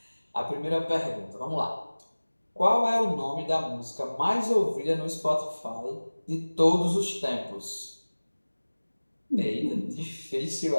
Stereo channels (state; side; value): inverted; both; correlation -1.00